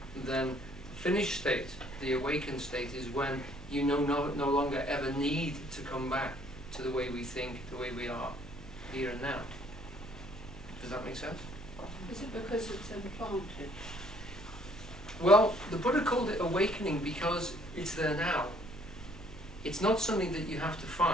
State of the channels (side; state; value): both; normal; correlation 0.61